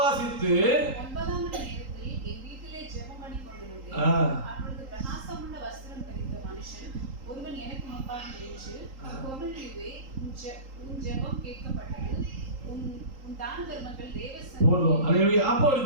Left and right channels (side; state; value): left; late; 3.8 ms